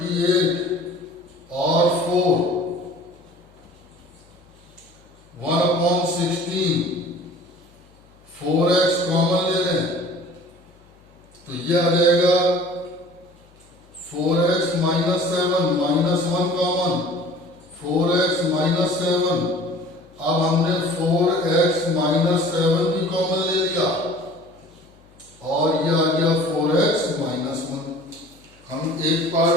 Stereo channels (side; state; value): left; noise; hum, 29 dB below the sound